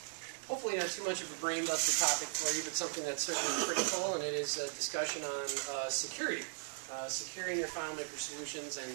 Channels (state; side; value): silent; left; 53 dB below the other